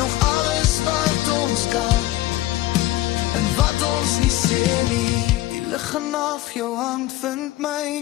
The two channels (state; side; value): quieter; right; 16.7 dB